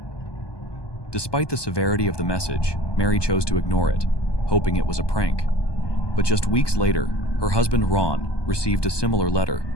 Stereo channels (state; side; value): late; right; 1.2 ms